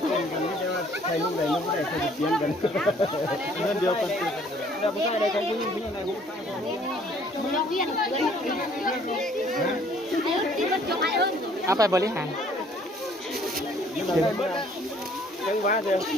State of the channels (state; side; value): normal; both; correlation 0.59